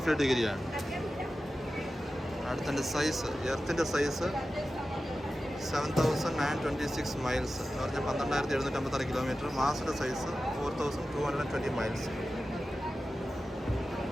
ഡിഗ്രിയാണ്. അടുത്തതിൻ്റെ സൈസ്, എർത്തിൻ്റെ സൈസ് 7,926 മൈൽസ് എന്ന് പറഞ്ഞാൽ 12,756 കിലോമീറ്റർ. മാസിൻ്റെ സൈസ് 4,220 മൈൽസ്.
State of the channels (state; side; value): normal; both; correlation 0.93